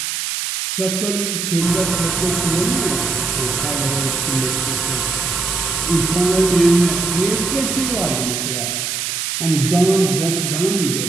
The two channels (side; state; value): right; noise; hiss, 2 dB below the sound